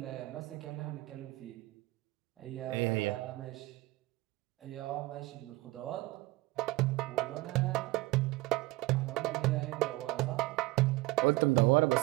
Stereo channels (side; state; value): left; quieter; 20.5 dB